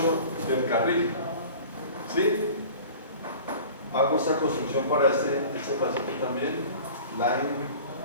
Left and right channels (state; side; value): inverted; both; correlation -0.42